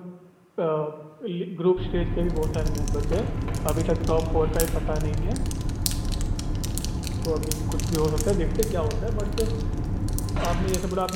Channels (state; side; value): identical; both; correlation 1.00